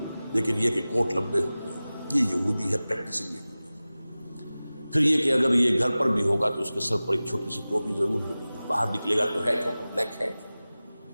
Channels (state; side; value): inverted; both; correlation -0.97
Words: لیکن یہ کہ کوٹ لمبے ہوتے ہیں. یہ یہودی ہے، پریکٹسنگ یہودی. پھر یہ کہ اگر یہ گھر پر بھی ہوگا تو اس کے سر پر ایک چھوٹی سی ٹوپی ضرور ہوگی، باہر نکلے گا تو ہیٹ ہوگا، بلیک ہیٹ،